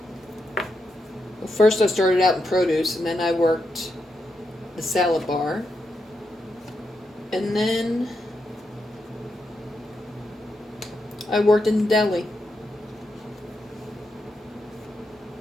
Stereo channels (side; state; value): both; normal; correlation 0.84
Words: first I started out in produce, and then I worked the salad bar, and then I worked in the deli.